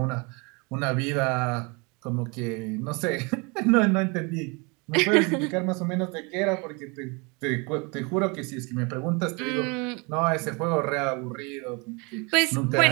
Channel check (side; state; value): left; quieter; 29.7 dB